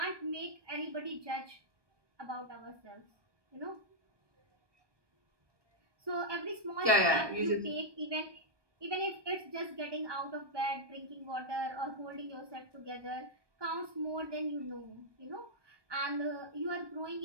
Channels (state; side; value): late; left; 1.2 ms